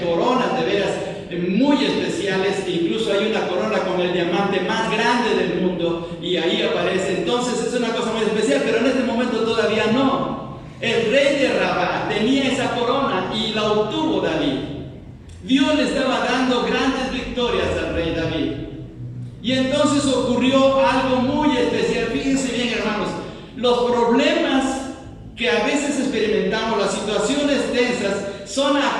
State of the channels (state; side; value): identical; both; correlation 1.00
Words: coronas de veras muy especiales. Incluso hay una corona con el diamante más grande del mundo y ahí aparece. Entonces es una cosa muy especial, pero en este momento todavía no. El rey de Rabá tenía esa corona y la obtuvo David. Dios le estaba dando grandes victorias al rey David. Y entonces ocurrió algo muy especial. Fíjense bien, hermanos, los problemas que a veces experimentamos, las situaciones tensas, son